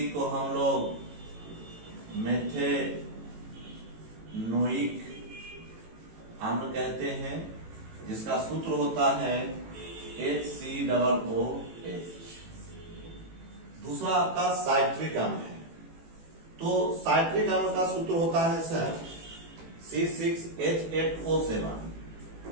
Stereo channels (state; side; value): late; left; 18 ms